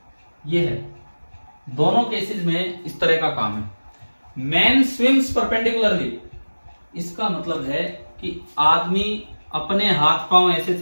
ये है, दोनों केसेस में इस तरह का काम है। मैन स्विम्स परपेंडिकुलरली, इसका मतलब है कि आदमी अपने हाथ पांव ऐसे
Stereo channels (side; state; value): both; inverted; correlation -1.00